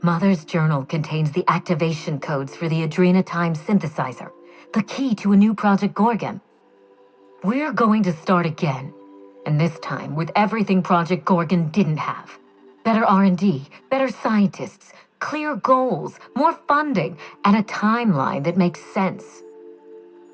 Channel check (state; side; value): identical; both; correlation 1.00